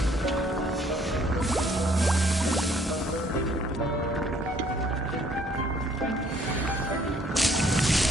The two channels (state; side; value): normal; both; correlation 0.62